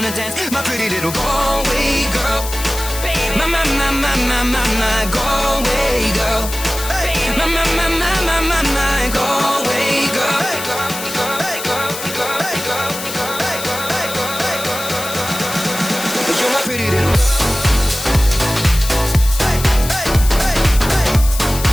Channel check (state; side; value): noise; left; hiss, 8 dB below the sound